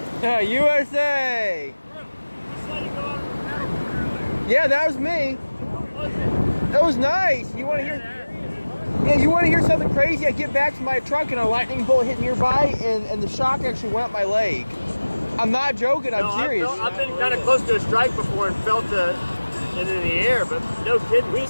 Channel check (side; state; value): both; inverted; correlation -1.00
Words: Yeah, USA. Yeah, that was me. That was nice. You want to hear? Yeah, you want to hear something crazy? I get back to my truck and a lightning bolt hit nearby, and the shock actually went up my leg. I'm not joking. I'm serious. I've been kind of close to a strike before and felt it in the air, but no kidding. We